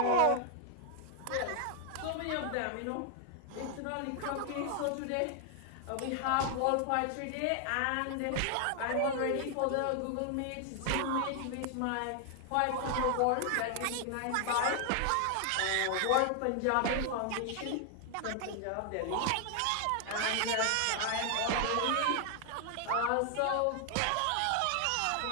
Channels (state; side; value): different; both; correlation 0.00